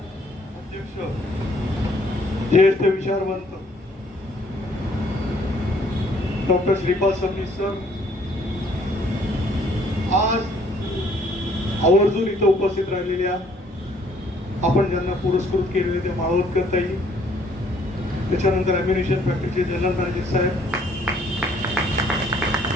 अध्यक्ष ज्येष्ठ विचारवंत डॉक्टर श्रीपाद सबनीस सर आज आवर्जून इथं उपस्थित राहिलेल्या आपण ज्यांना पुरस्कृत केलेले ते माळवतकर ताई, त्याच्यानंतर अम्युनिशन फॅक्टरीचे जनरल मॅनेजर साहेब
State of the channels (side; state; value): both; normal; correlation 0.62